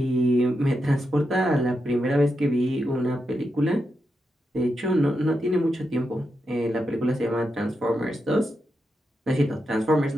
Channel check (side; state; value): both; normal; correlation 0.86